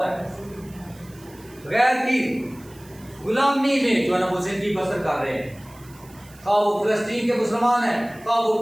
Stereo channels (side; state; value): right; noise; hiss, 25 dB below the sound